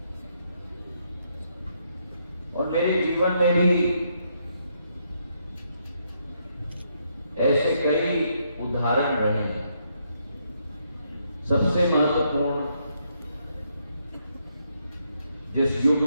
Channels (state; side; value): inverted; both; correlation -0.76